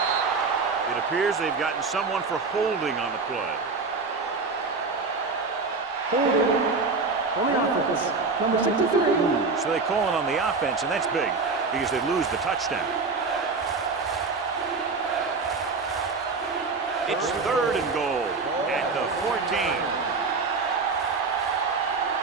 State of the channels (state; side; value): quieter; left; 4.3 dB